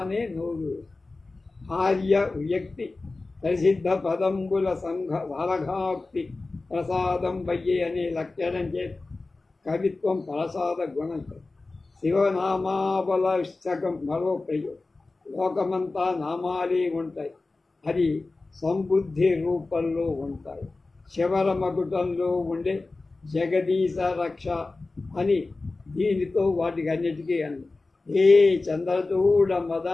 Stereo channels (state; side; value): quieter; right; 3.4 dB